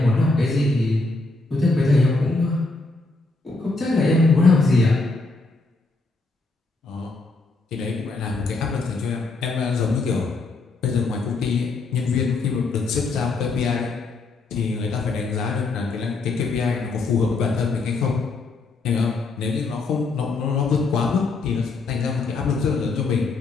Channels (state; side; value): quieter; right; 3.5 dB